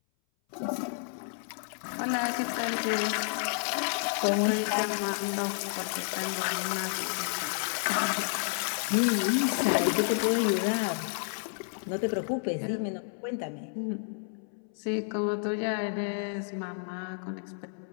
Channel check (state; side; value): silent; right; 57 dB below the other